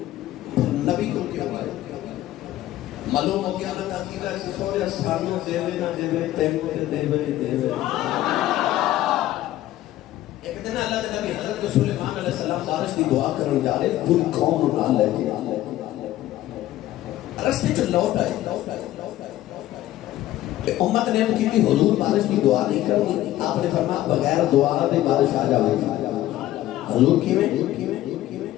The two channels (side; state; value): right; quieter; 14.4 dB